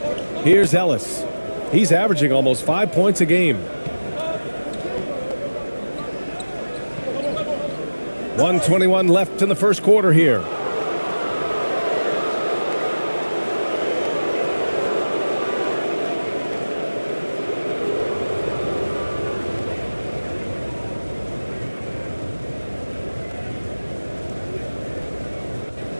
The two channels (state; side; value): inverted; both; correlation -1.00